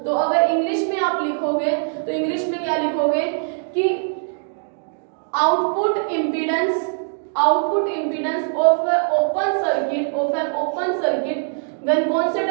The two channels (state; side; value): silent; left; digital silence